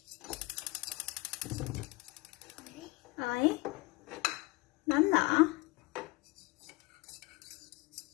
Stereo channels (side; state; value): right; quieter; 23.5 dB